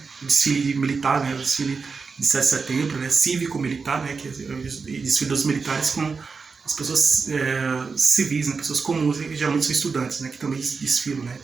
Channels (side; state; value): left; quieter; 4.9 dB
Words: O desfile militar, né? O desfile de 7 de setembro, né? Cívico-militar, né? Que é o desfile dos militares com as pessoas civis, né? Pessoas comuns, que geralmente são estudantes, né? Que também desfilam, né?